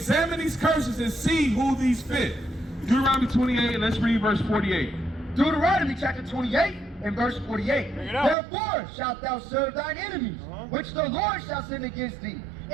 these curses and see who these fit. Deuteronomy 28, let's read verse 48. Deuteronomy chapter 28 and verse 48. Therefore shalt thou serve thine enemies, which the Lord shall send against thee,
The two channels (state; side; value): drops out; left; at 8.3 s